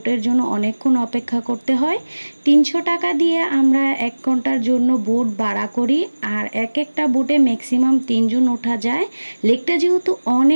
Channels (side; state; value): both; inverted; correlation -1.00